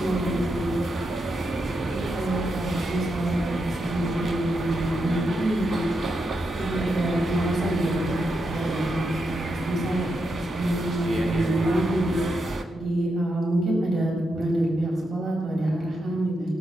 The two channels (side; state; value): both; normal; correlation 0.84